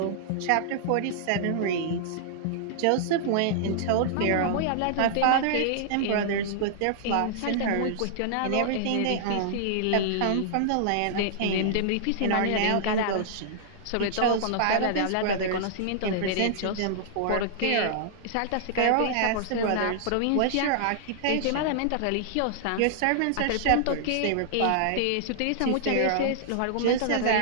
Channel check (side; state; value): both; different; correlation -0.01